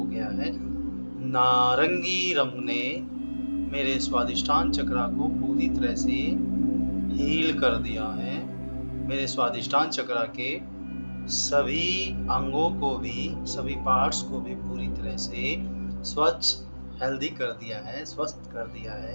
गया है। नारंगी रंग ने मेरे स्वादिष्टान चक्र को पूरी तरह से हील कर दिया है। मेरे स्वादिष्टान चक्र के सभी अंगों को भी, सभी पार्ट्स को भी पूरी तरह से स्वच्छ, हेल्दी कर दिया है, स्वस्थ कर दिया है,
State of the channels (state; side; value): inverted; both; correlation -1.00